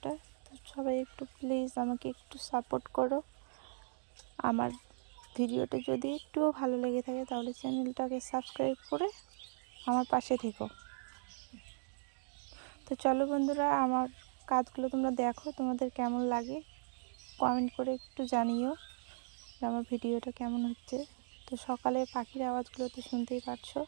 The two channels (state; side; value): silent; left; digital silence